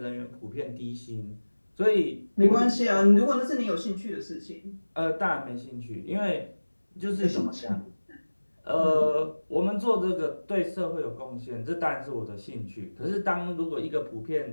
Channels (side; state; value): both; inverted; correlation -1.00